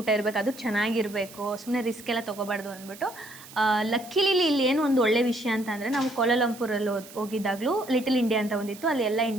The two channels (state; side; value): noise; right; hiss, 18 dB below the sound